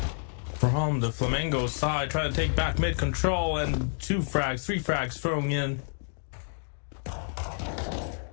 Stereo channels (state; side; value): silent; right; digital silence